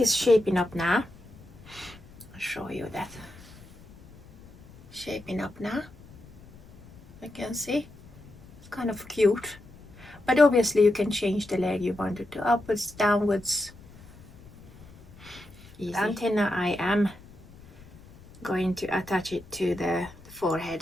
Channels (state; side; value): noise; left; rumble, 22 dB below the sound